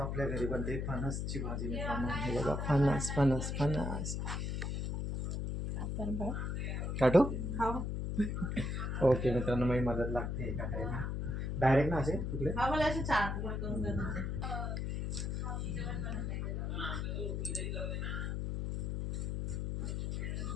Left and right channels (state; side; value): noise; left; hum, 2 dB below the sound